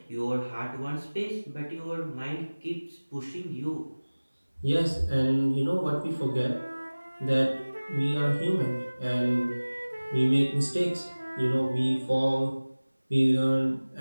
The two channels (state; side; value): inverted; both; correlation -1.00